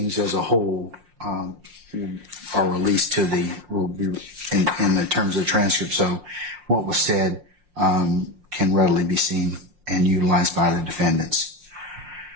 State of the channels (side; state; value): left; late; 5.6 ms